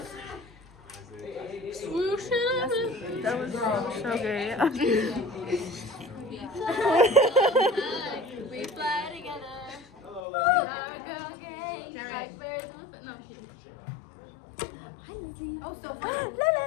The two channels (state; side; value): drops out; right; at 10.2 s